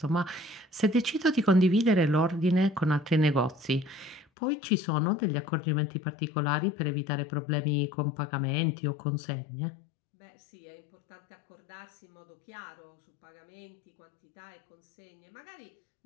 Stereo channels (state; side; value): drops out; right; at 4.2 s